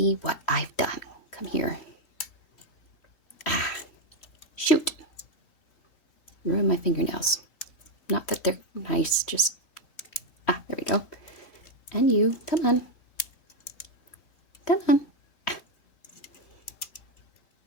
what I've done. Come here. Ah, shoot. Ruin my fingernails. Not that they're nice, just... Ah, there we go. And you, come on. Come on.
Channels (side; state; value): right; late; 3.1 ms